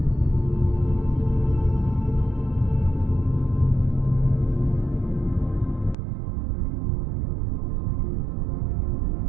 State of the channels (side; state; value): left; drops out; at 6.0 s